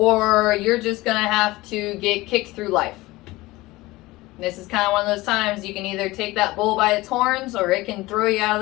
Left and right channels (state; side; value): quieter; right; 19.9 dB